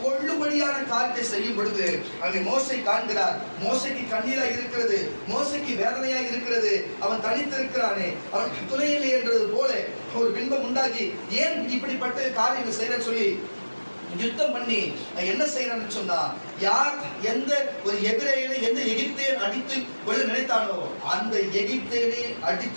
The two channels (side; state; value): both; inverted; correlation -1.00